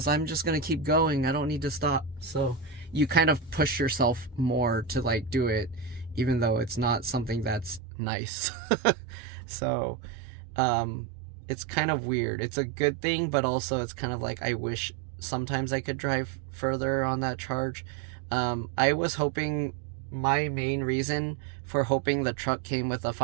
I'm just gonna keep going. I don't need to stop. So you kind of push yourself more to like do it, even though it's not something that's nice. So it's kind of weird. It's a good thing, but also it's kind of like I wish sometimes I could drive further on that charge. I was hoping, my main reason for hoping the truck came with a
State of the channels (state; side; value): drops out; left; at 7.8 s